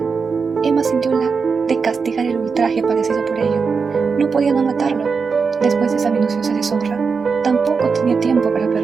Emma sintió la de castigar el ultraje padecido por ello. No podía no matarlo. Después de esa minuciosa deshonra, tampoco tenía tiempo para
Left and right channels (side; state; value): left; quieter; 5.2 dB